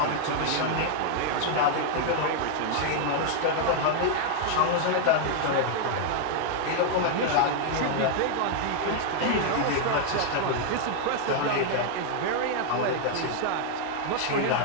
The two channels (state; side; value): different; both; correlation 0.00